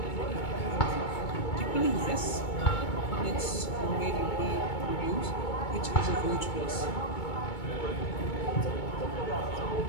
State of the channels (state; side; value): late; right; 2.2 ms